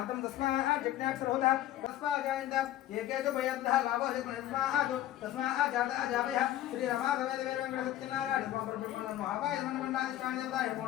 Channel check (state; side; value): quieter; right; 13.4 dB